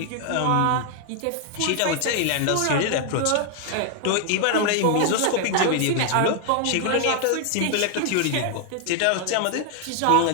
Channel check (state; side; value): different; both; correlation 0.00